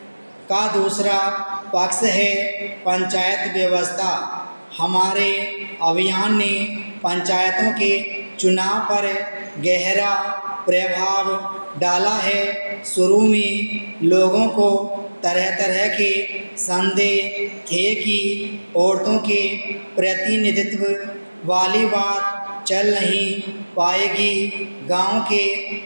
का दूसरा पक्ष है पंचायत व्यवस्था। हमारे अभियान ने पंचायतों के चुनाव पर गहरा प्रभाव डाला है। शुरू में लोगों को तरह तरह के संदेह थे कि औरतों के प्रतिनिधित्व वाली बात चल नहीं पाएगी। गांव के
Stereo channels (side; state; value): both; inverted; correlation -1.00